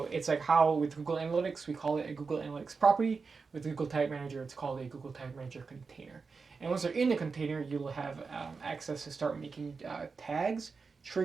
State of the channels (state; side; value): quieter; left; 4.8 dB